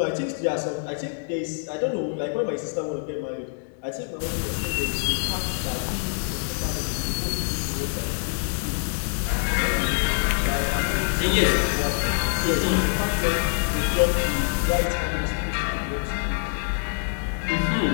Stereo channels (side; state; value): right; silent; digital silence